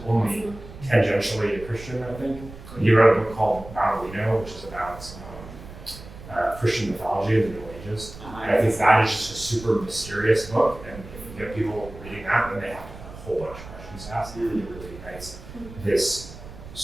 only tangentially a Christian, I think. He wrote a book called Baudolino, which is about Christian mythology in the Middle Ages. And I think that is just a super mysterious book, and if you get people reading that, then they have a whole bunch of questions to ask. It really ignites this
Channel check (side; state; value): right; noise; rumble, 15 dB below the sound